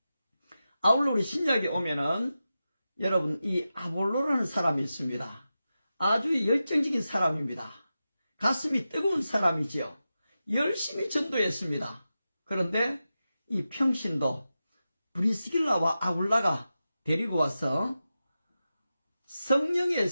아울러 우리 신약에 오면은 여러분, 이 아볼로라는 사람이 있습니다. 아주 열정적인 사람입니다. 가슴이 뜨거운 사람이지요. 열심히 전도했습니다. 그런데 이 평신도 브리스길라와 아굴라가 데리고 와서 성령의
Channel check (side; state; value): both; inverted; correlation -0.92